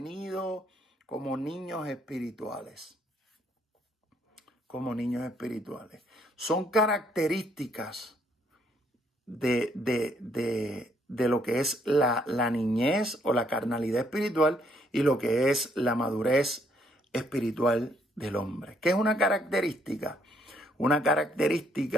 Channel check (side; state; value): both; normal; correlation 0.69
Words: como niños espirituales. Como niños espirituales. Son características de lo que es la niñez o la carnalidad espiritual y lo que es la madurez espiritual del hombre. ¿Qué es una característica? Una